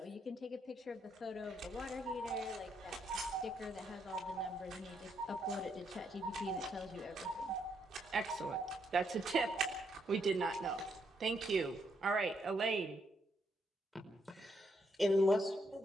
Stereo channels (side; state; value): both; normal; correlation 0.75